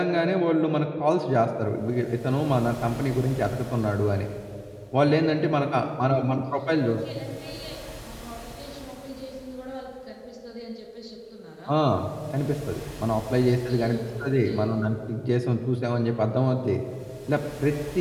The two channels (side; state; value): both; identical; correlation 1.00